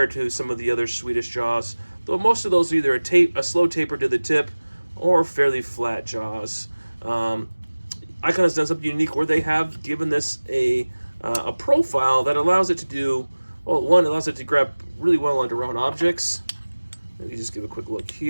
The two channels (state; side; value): inverted; both; correlation -1.00